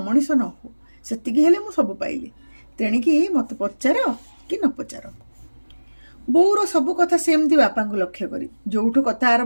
ନ ହୁଅ। ସେତିକି ହେଲେ ମୁଁ ସବୁ ପାଇଲି। ତେଣିକି ମୋତେ ପଚାର କି ନ ପଚାର। ବୋଉର ସବୁ କଥା ସେମିତି ବାପାଙ୍କୁ ଲକ୍ଷ୍ୟ କରି ଯୋଉଠୁ କଥା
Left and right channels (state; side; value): inverted; both; correlation -1.00